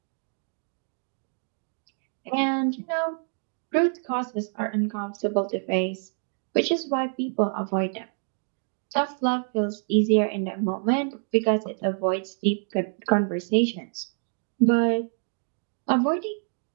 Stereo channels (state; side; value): silent; left; 55 dB below the other